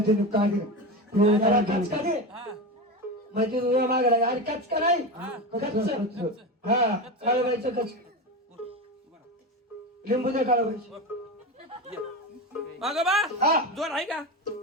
त्याला कचका दे हा माहिती तुझ्या मागला अरे कचका नाही कच्च हा काळाबाईचं कच लिंबू दे काळाबाईचं अगं बा हा जोर आहे का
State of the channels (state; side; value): normal; both; correlation 0.21